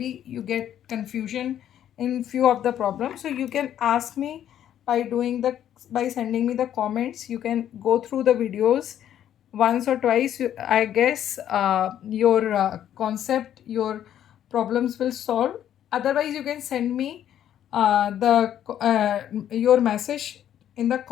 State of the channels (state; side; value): quieter; right; 10.6 dB